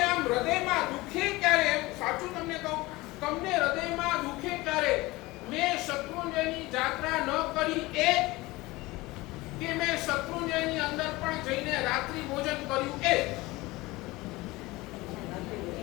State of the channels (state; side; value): quieter; right; 20.8 dB